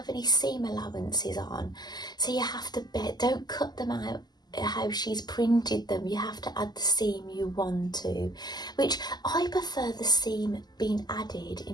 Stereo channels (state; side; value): late; right; 0.20 ms